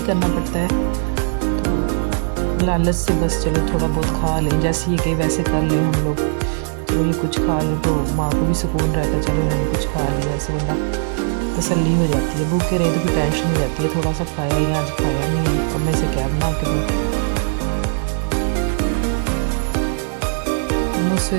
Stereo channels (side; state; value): left; silent; 66 dB below the other